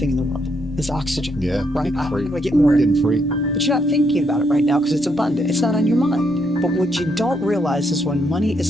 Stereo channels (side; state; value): both; normal; correlation 0.75